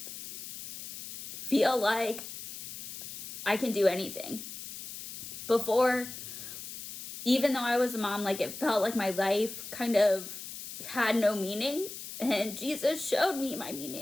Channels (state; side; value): noise; left; hiss, 10 dB below the sound